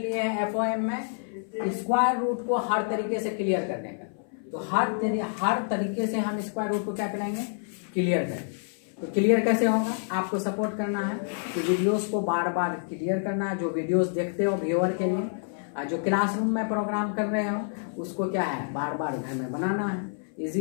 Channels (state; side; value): silent; right; 56 dB below the other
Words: हैं FOM में स्क्वायर रूट को हर तरीके से क्लियर करने का। तो हर तरीके से हम स्क्वायर रूट को क्या कराएंगे क्लियर करें। तो क्लियर कैसे होगा, आपको सपोर्ट करना है कि वीडियोस को बार बार क्लियर करना है। जो वीडियोस देखते हो व्यूअर के लिए, जो क्लासरूम में प्रोग्राम कर रहे हो उसको क्या है बार बार घर में बनाना है,